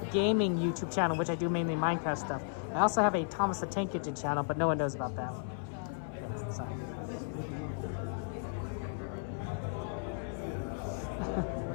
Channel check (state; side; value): silent; right; 55 dB below the other